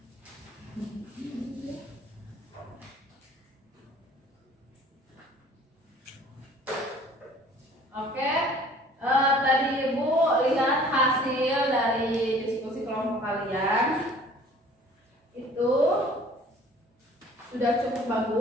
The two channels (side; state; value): both; normal; correlation 0.51